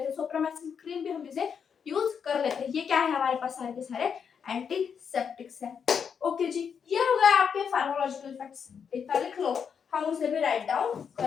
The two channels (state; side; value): quieter; right; 6.9 dB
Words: हैं, सोप्रामाइसिन क्रीम भी हम इसे यूज कर लेते हैं। ये क्या है हमारे पास सारे के सारे एंटीसेप्टिक्स है। ओके जी, ये हो गया आपके फार्माकोलॉजिकल इफेक्ट्स। इतना लिख लो, हम उसे भी राइट डाउन